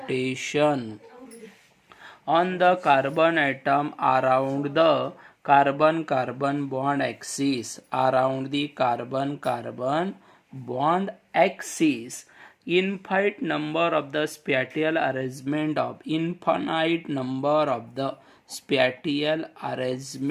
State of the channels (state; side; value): identical; both; correlation 1.00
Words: on the carbon atom around the carbon bond axis around the carbon bond axis infinite number of the spatial arrangement of infinite number of the spatial